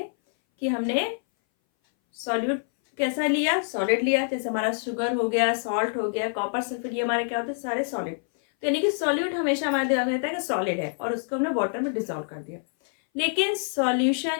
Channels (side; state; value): right; silent; 59 dB below the other